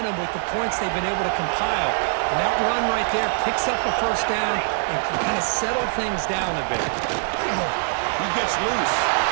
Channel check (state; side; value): silent; left; 63 dB below the other